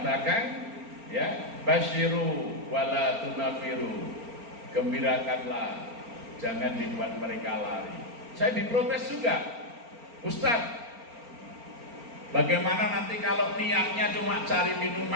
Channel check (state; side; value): late; left; 4.4 ms